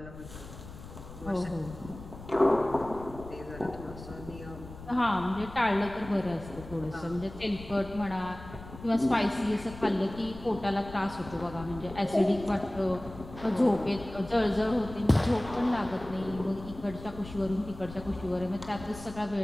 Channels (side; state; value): left; noise; rumble, 14 dB below the sound